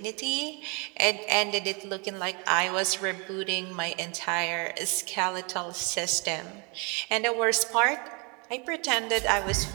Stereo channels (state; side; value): quieter; left; 32.1 dB